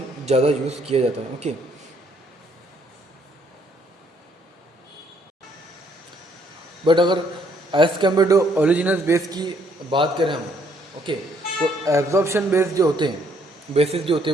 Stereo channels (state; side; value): normal; both; correlation 0.67